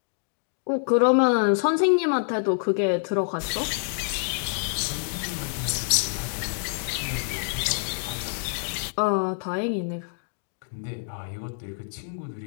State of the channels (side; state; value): right; silent; digital silence